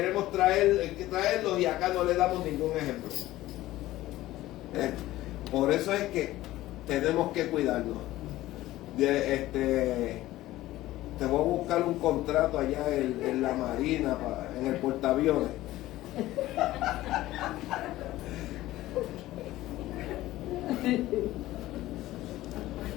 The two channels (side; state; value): right; quieter; 16.1 dB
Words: traerlos, y acá no le damos ningún ejemplo. Por eso es que tenemos que cuidarnos. Te voy a buscar un contrato allá en la Marina, en el portaaviones.